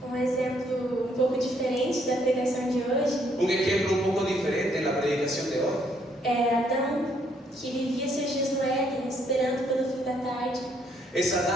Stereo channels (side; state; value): both; normal; correlation 0.69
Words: Um exemplo um pouco diferente da pregação de hoje Un ejemplo un poco diferente en la predicación de hoy é Adão, que vivia seus dias no Éden, esperando pelo fim da tarde. es